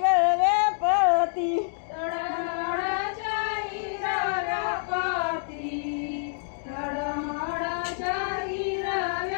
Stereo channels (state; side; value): silent; right; digital silence